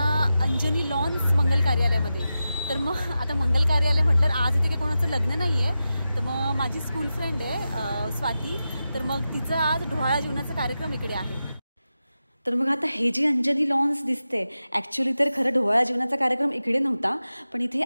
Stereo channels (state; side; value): inverted; both; correlation -0.92